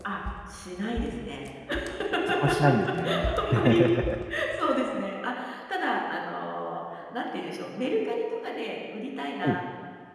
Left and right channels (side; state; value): both; identical; correlation 1.00